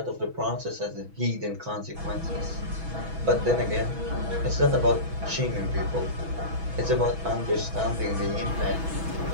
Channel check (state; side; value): late; left; 6.1 ms